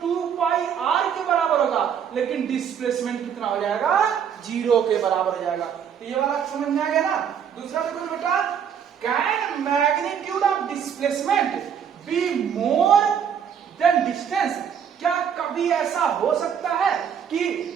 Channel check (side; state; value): left; quieter; 8.0 dB